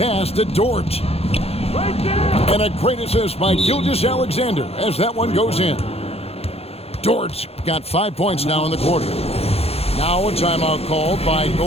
to Dort. And a great assist by Gilgeous Alexander as that one goes in. Dort's got 5 points now in the quarter. Now a timeout called by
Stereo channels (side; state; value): right; late; 0.29 ms